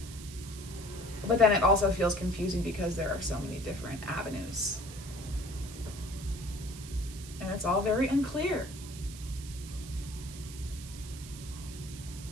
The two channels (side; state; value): right; noise; hiss, 14 dB below the sound